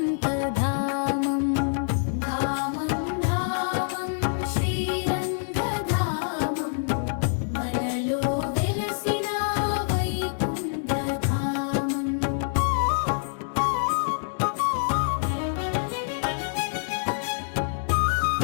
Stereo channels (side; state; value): right; silent; digital silence